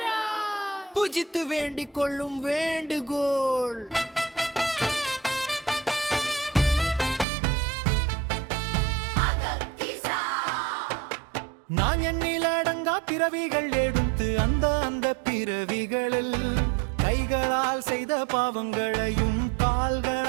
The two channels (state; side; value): drops out; left; at 7.2 s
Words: புஜித்து வேண்டிக் கொள்ளும் வேண்டுகோள். நான் எண்ணில் அடங்கா பிறவிகள் எடுத்து அந்த பிறவிகளில் கைகளால் செய்த பாவங்களையும்